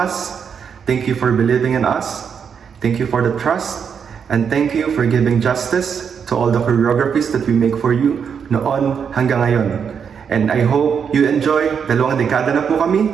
thank you for believing in us, thank you for the trust, and thank you for giving justice to all the choreographies that we make for you noon hanggang ngayon. And I hope you enjoy, 2 dekada na po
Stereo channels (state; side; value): quieter; left; 7.0 dB